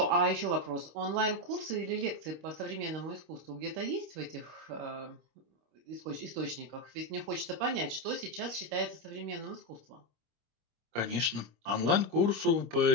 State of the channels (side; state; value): left; late; 26 ms